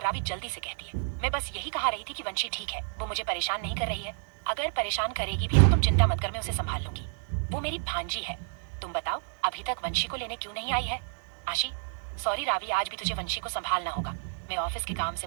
रावी जल्दी से कहती है, मैं बस यही कहा रही थी कि वंशी ठीक है, वो मुझे परेशान नहीं कर रही है। अगर परेशान करेगी भी तो तुम चिंता मत कर, मैं उसे संभाल लूंगी। वो मेरी भांजी है। तुम बताओ अभी तक वंशी को लेने क्यों नहीं आई है? आशी, सॉरी रावी, आज भी तुझे वंशी को संभालना होगा। मैं ऑफिस के काम से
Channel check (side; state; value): left; silent; 58 dB below the other